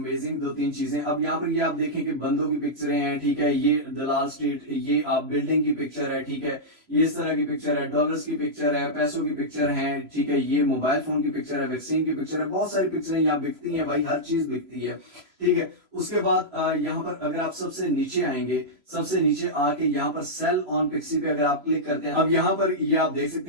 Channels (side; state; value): left; late; 3.0 ms